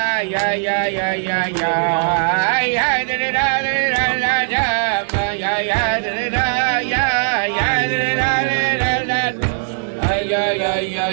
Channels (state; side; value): silent; left; digital silence